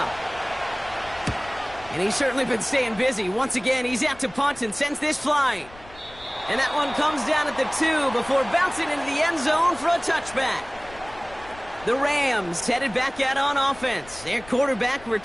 And he's certainly been staying busy. Once again, he's out to punt and sends this flying. And that one comes down at the 2 before bouncing into the end zone for a touchback. The Rams headed back out on offense. Their quarterback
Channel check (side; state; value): left; noise; rumble, 21 dB below the sound